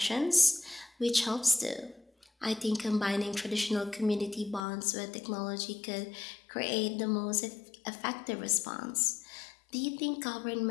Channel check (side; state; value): right; drops out; at 4.6 s